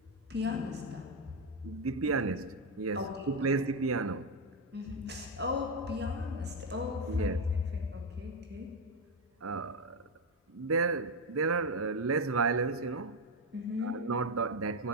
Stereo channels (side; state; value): both; normal; correlation 0.08